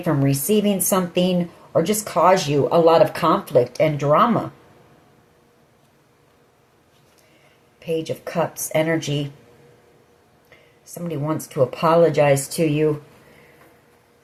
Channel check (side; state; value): both; identical; correlation 1.00